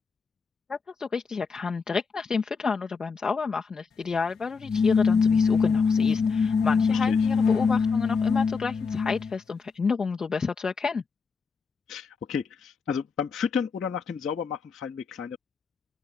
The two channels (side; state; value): right; quieter; 5.1 dB